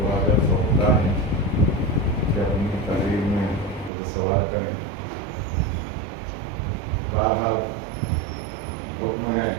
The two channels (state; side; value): drops out; left; at 3.9 s